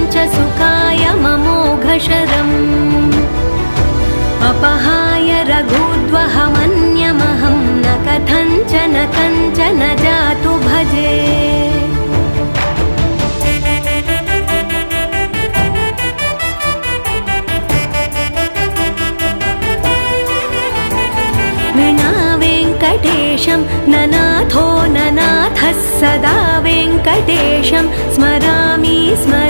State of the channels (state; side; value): inverted; both; correlation -1.00